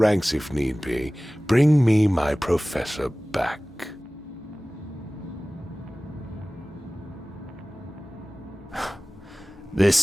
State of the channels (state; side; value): normal; both; correlation 0.98